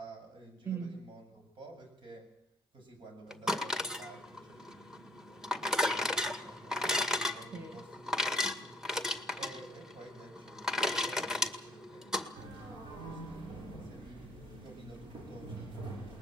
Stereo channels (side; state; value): both; normal; correlation 0.62